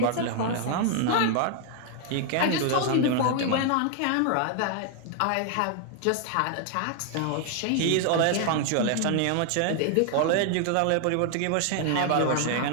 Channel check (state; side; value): different; both; correlation 0.00